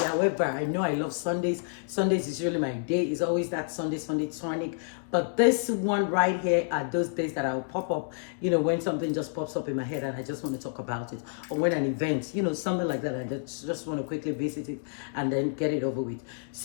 However, I know I love Sundays. Sundays is really my day. It's always that Sunday tonic. But this one right here are those days that I'll pop up, when something just pops up in my head and I just want to talk about it. Or when an event, something like that. I just want to quickly visit it and then get it over with.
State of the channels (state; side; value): silent; right; digital silence